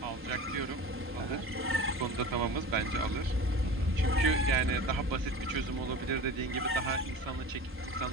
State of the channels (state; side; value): normal; both; correlation 0.35